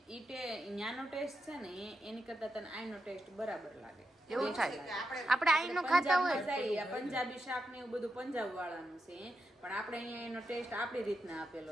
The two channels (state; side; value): normal; both; correlation 0.86